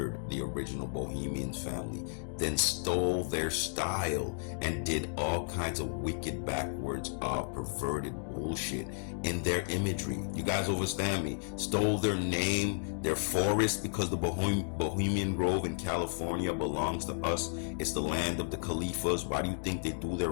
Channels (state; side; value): silent; right; digital silence